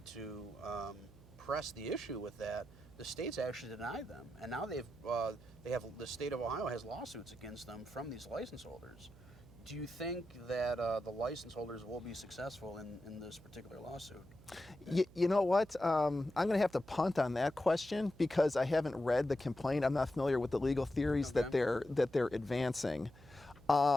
to press the issue with that, the state's actually denied them. And now the state of Ohio has lawsuits against them from these license holders Do you think that the license holders will be successful in this particular lawsuit? You know what? I'm going to have to punt on that question because I haven't read the complaint. I'm not familiar with the legal theories Okay. that they're advancing.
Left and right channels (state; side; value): noise; right; hum, 22 dB below the sound